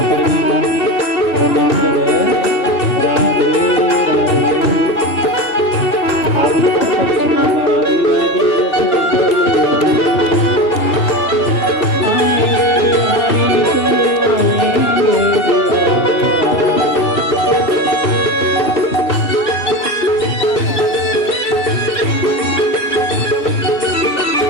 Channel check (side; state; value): right; late; 2.8 ms